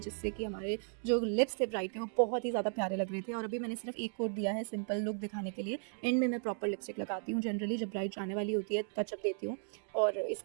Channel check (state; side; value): silent; left; 54 dB below the other